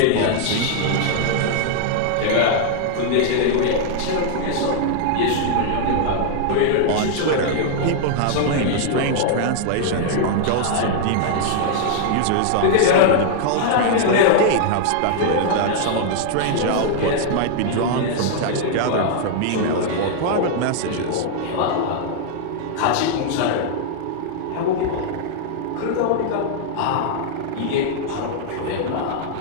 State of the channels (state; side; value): different; both; correlation -0.01